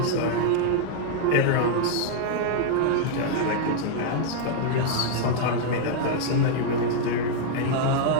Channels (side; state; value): both; different; correlation -0.01